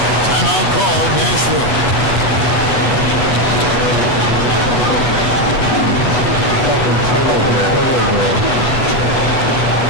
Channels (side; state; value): right; late; 8.2 ms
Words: Timeout called, Nashville.